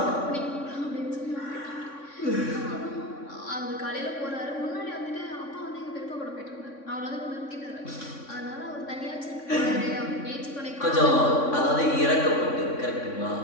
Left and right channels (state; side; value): late; right; 3.6 ms